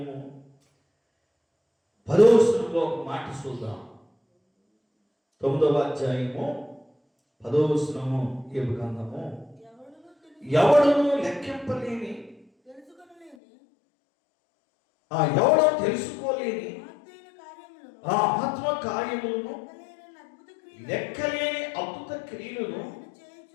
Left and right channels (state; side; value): drops out; right; at 13.4 s